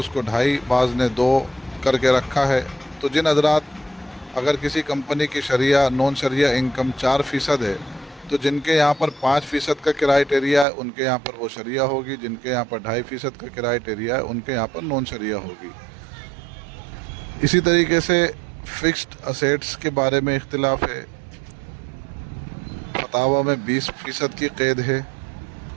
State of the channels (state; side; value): drops out; left; at 10.7 s